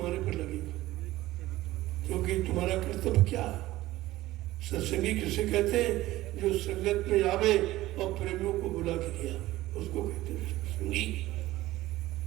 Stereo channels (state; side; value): quieter; left; 16.7 dB